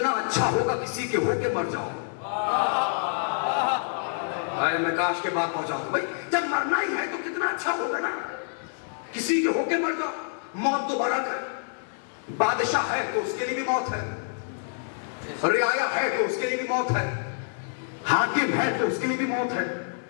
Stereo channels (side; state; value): right; silent; digital silence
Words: اچھا ہوگا کسی کے ہو کے مر جاؤ. میں کاش کے بات پہنچا دوں بھائی, جب مرنا ہی ہے تو کتنا اچھا ہوگا نا کسی کے ہو کے مر جاؤ. موت تو بڑا ہے, بادشاہ ہے تو اس کے لیے بھی موت ہے, رعایا ہے تو اس کے لیے بھی موت ہے, حاکم ہے تو اس کے لیے بھی موت ہے,